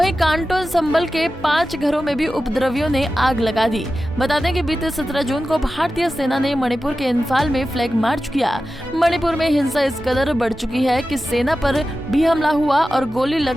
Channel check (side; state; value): both; normal; correlation 0.93